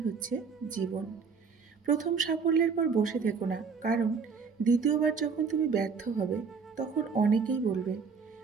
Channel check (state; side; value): quieter; left; 5.5 dB